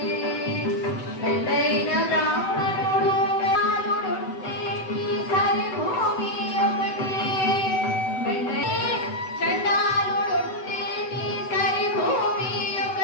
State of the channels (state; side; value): late; right; 7.9 ms